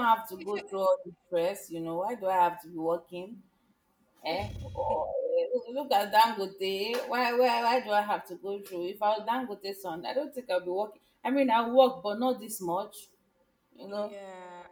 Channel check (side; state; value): both; identical; correlation 1.00